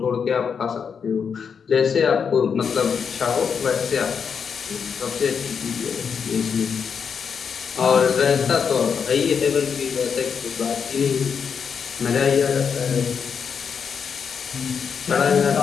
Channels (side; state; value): right; quieter; 6.6 dB